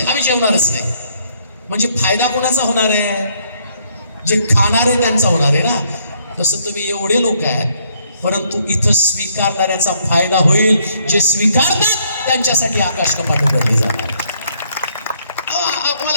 आम्ही जेवणारच नाही. म्हणजे फायदा कोणाचा होणार आहे? जे खाणारे त्यांचा होणार आहे ना. तसं तुम्ही एवढे लोक आहेत, परंतु इथं स्वीकारणाऱ्याचा फायदा होईल. जे स्वीकारतात त्यांच्यासाठी आकाश कपाट उघडली जाणार.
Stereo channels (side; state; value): both; inverted; correlation -0.69